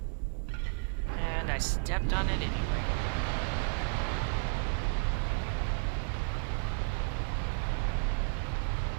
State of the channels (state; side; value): silent; left; 56 dB below the other